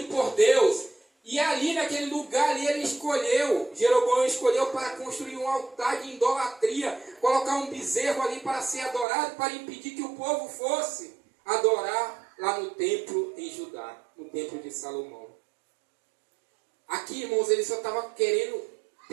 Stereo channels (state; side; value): drops out; left; at 9.1 s